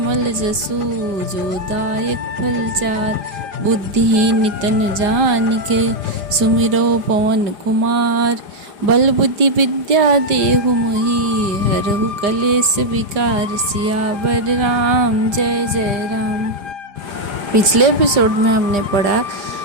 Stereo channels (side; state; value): left; late; 5.0 ms